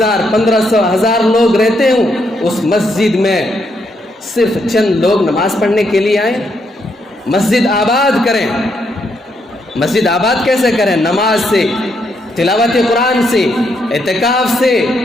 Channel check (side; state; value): both; normal; correlation 0.77